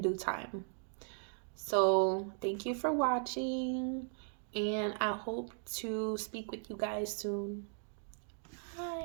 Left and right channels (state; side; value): silent; left; 53 dB below the other